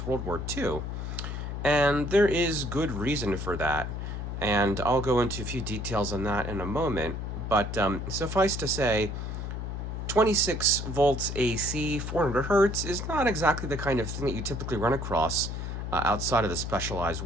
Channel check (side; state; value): left; noise; hum, 5 dB below the sound